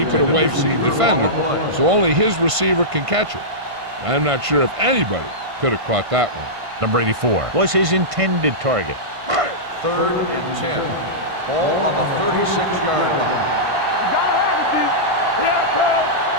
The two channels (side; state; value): left; late; 1.5 ms